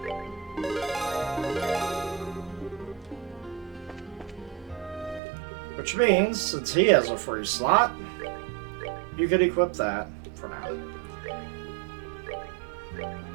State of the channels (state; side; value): drops out; left; at 5.2 s